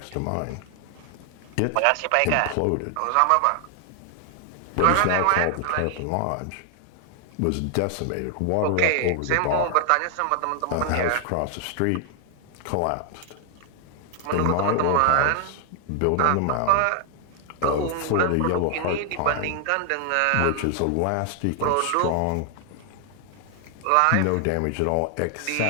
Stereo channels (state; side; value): different; both; correlation 0.00